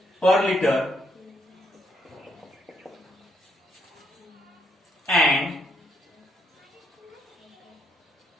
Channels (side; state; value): both; normal; correlation 0.74